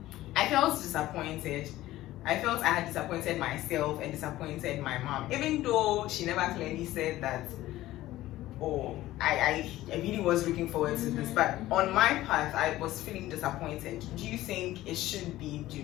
I felt disappointed. I felt I had disappointed myself and disappointed my mom, even though she never clearly said that, oh, I really was looking forward to this. But on my path, I was feeling disappointed. Do you think it should be? Do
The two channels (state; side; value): quieter; right; 15.7 dB